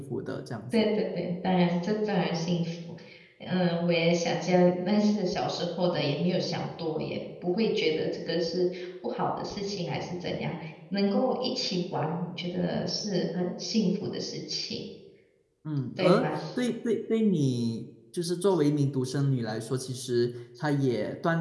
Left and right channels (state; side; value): identical; both; correlation 1.00